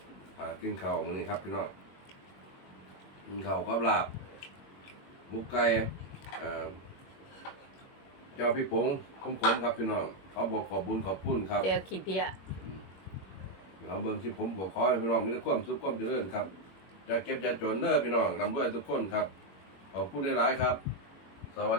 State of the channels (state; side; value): late; right; 21 ms